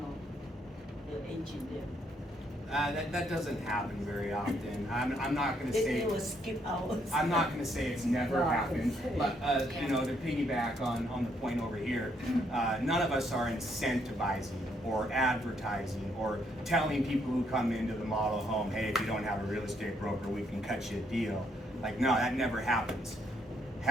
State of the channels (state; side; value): normal; both; correlation 0.72